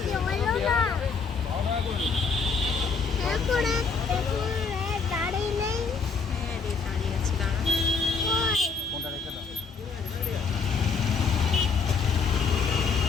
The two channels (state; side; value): quieter; right; 5.0 dB